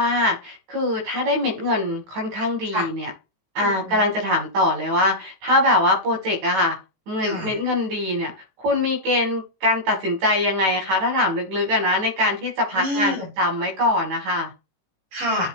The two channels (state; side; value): late; left; 18 ms